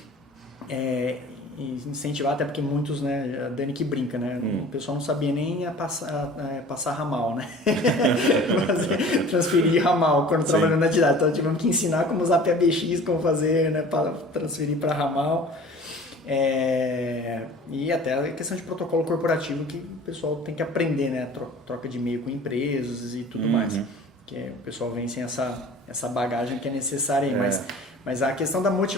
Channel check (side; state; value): both; normal; correlation 0.44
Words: e incentivar, até porque muitos, né, a Dani que brinca, né, o pessoal não sabia nem passar ramal, né, transferir ramal quando trabalhando na didática, então tivemos que ensinar como usar PBX, como fazer, né, para transferir para ramal, e até a questão de protocolo corporativo que o pessoal tem que aprender, né, troca de e-mail com empresas e tudo mais, que o pessoal vem sem essa bagagem que é necessária aí, mas a questão da